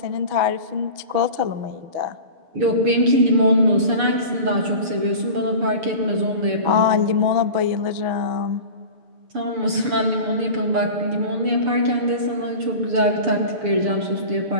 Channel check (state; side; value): late; left; 6.8 ms